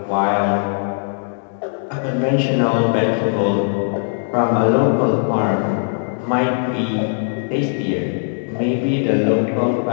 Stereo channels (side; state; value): right; silent; digital silence